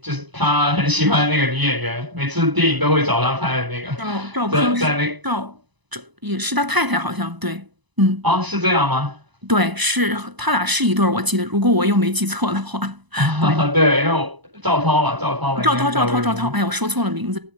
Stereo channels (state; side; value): late; left; 1.0 ms